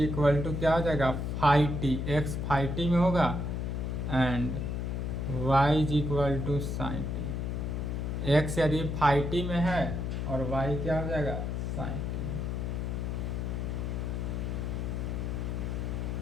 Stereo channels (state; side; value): noise; left; hum, 2 dB below the sound